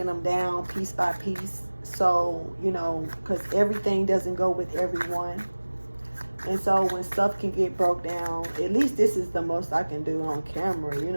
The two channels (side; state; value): both; inverted; correlation -1.00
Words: them down piece by piece. So, because everything doesn't go with everyone. And so when stuff can get broke down, at least this is the most I can do on camera. You